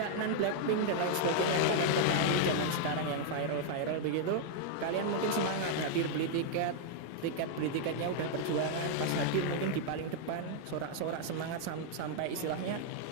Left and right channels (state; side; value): different; both; correlation 0.00